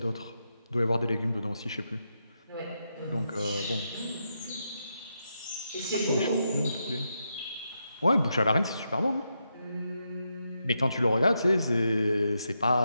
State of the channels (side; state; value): both; inverted; correlation -0.84